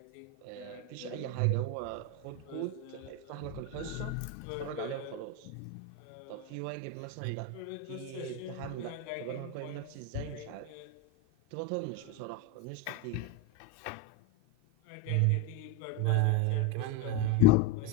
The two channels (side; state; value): both; different; correlation 0.04